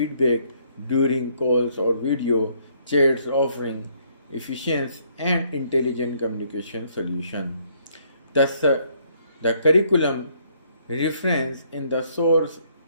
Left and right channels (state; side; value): inverted; both; correlation -0.67